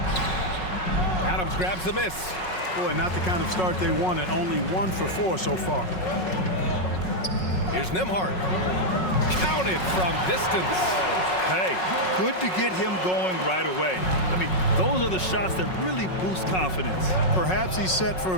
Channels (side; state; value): right; late; 5.4 ms